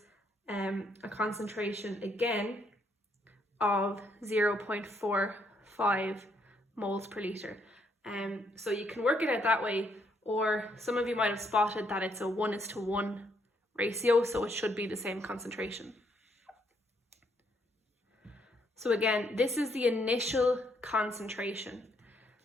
a concentration again of 0.45 moles per litre. So you can work it out that way, or some of you might have spotted that it's a 1:1 ratio, so it should be the same concentration. So again, this is the initial concentration.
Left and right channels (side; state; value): both; normal; correlation 0.72